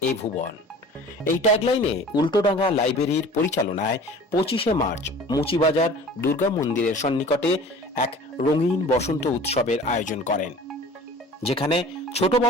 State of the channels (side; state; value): both; normal; correlation 0.44